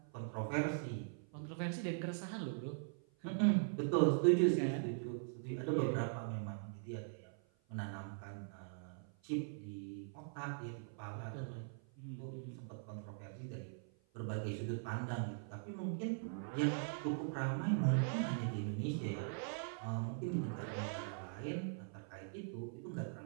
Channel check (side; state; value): left; silent; 50 dB below the other